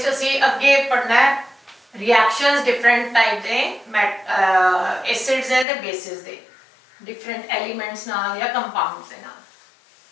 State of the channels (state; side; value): drops out; right; at 5.7 s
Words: ਅਸੀਂ ਅੱਗੇ ਪੜਨਾ ਹੈ ਰਿਐਕਸ਼ਨਸ ਡਿਫਰੈਂਟ ਟਾਈਪ ਦੇ ਐਸਿਡਸ ਦੇ ਤੇ ਬੇਸਿਸ ਦੇ ਡਿਫਰੈਂਟ ਐਲੀਮੈਂਟਸ ਨਾਲ ਜਾਂ ਕੰਪਾਊਂਡਸ ਦੇ ਨਾਲ।